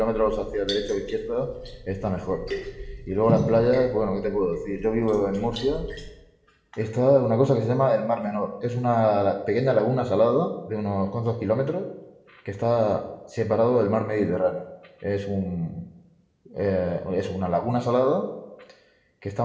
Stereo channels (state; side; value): identical; both; correlation 1.00